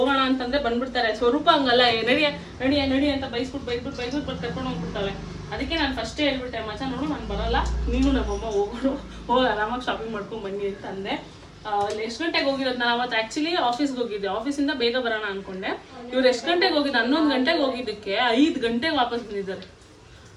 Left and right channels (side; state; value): both; identical; correlation 1.00